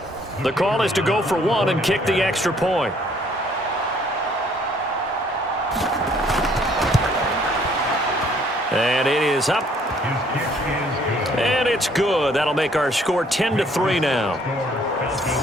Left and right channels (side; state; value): both; normal; correlation 0.62